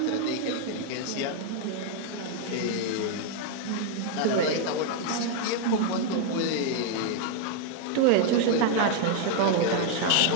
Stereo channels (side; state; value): both; different; correlation 0.00